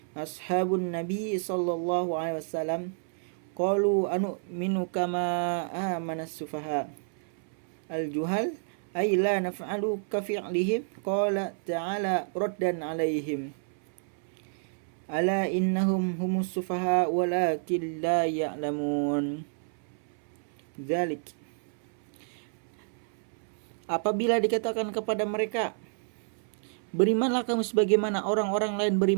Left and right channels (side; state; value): left; silent; 58 dB below the other